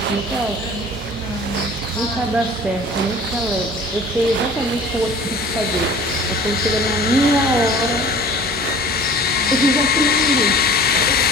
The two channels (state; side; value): normal; both; correlation 0.45